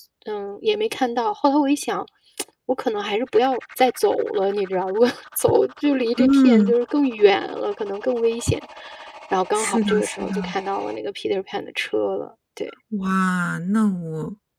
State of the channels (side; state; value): both; identical; correlation 1.00